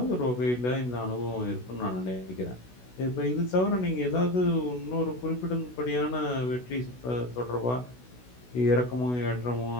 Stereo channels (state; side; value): late; right; 16 ms